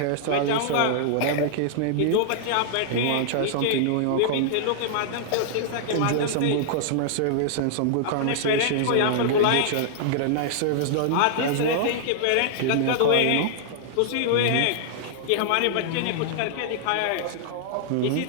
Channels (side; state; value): both; different; correlation -0.01